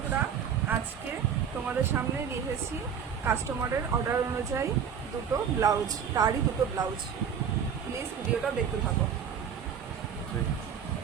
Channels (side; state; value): left; quieter; 7.6 dB